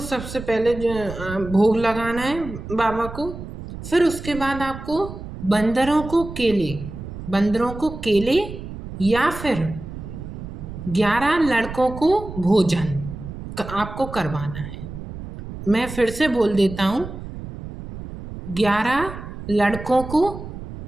सबसे पहले जो भोग लगाना है बाबा को। फिर उसके बाद आपको बंदरों को केले या फिर 11 लड़कों को भोजन आपको करवाना है। मैं फिर से बोल देता हूँ, 11 लड़कों को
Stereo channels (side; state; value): right; noise; rumble, 11 dB below the sound